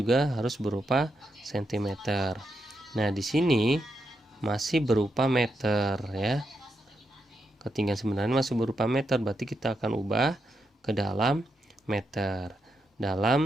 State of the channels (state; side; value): normal; both; correlation 0.83